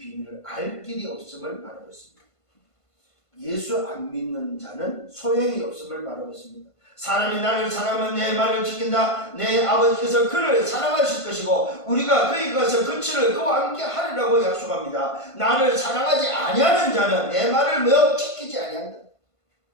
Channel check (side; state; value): right; late; 1.5 ms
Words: 알 길이 없음을 말하고 있습니다. 예수 안 믿는 자는 소용이 없음을 말하고 있습니다. 사람이 나를 사랑하면 내 말을 지킨다. 내 아버지께서 그를 사랑하실 것이고 우리가 그에게 가서 그와 함께 하리라고 약속합니다. 나를 사랑하지 아니하는 자는 내 말을 지키지 아니한다.